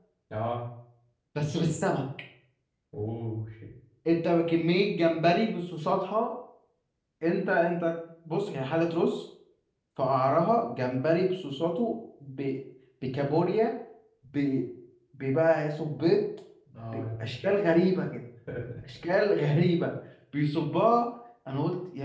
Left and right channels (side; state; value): both; identical; correlation 1.00